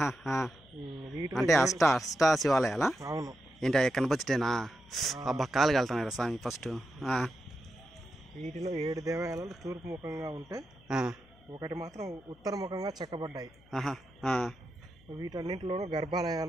అంటే అష్ట శివాలయాలా? అవును. ఏంటి కనపచ్చటేనా? అబ్బా కాలు కలుతున్నాయి స్వామి ఫస్ట్. వీటిలో 7 దేవాలయాలు తూర్పు ముఖంగా ఉంటే ఒకటి మాత్రం ఉత్తర ముఖంగా చెక్కబడ్డాయి. వీటన్నింటిలోనూ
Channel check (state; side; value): noise; left; hum, 27 dB below the sound